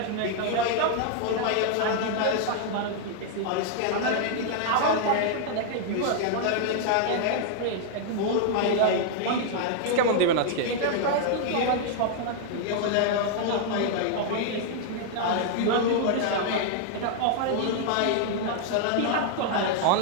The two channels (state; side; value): different; both; correlation -0.01